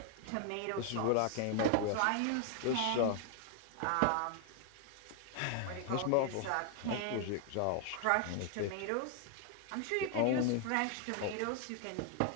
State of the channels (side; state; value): both; different; correlation 0.00